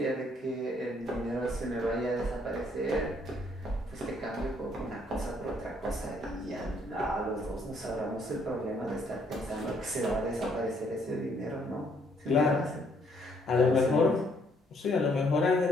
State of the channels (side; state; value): both; normal; correlation 0.68